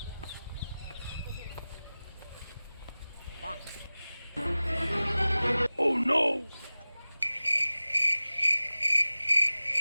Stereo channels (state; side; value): inverted; both; correlation -0.98